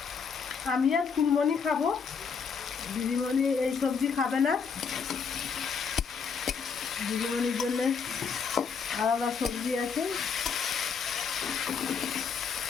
আমি আর ফুলমণি খাবো, দিদিমণি এই সবজি খাবে না। দিদিমণির জন্যে আলাদা সবজি আছে।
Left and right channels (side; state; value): right; quieter; 6.0 dB